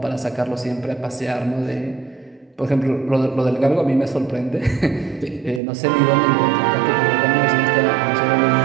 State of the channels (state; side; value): drops out; left; at 5.6 s